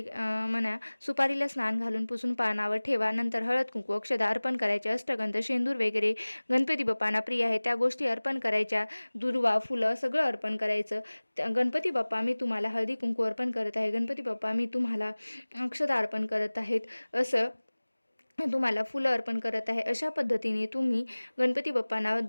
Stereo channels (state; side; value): inverted; both; correlation -1.00